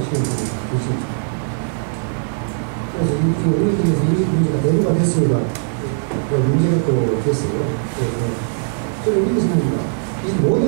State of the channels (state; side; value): silent; left; 66 dB below the other